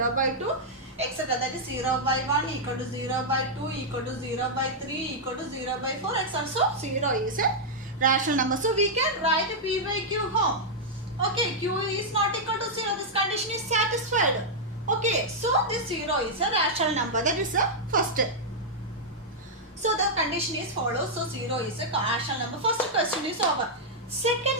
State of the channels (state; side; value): normal; both; correlation -0.06